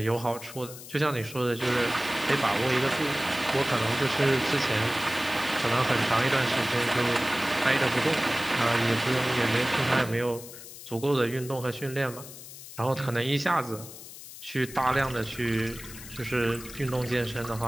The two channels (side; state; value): left; noise; hiss, 14 dB below the sound